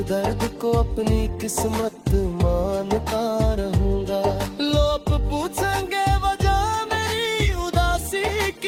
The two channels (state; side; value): identical; both; correlation 1.00